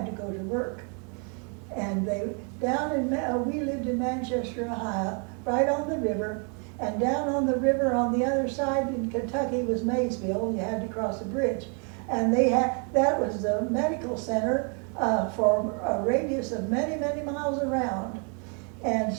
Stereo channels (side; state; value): left; quieter; 38.5 dB